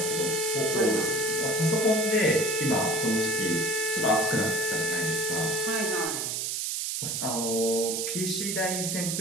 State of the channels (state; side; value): noise; right; hiss, 1 dB below the sound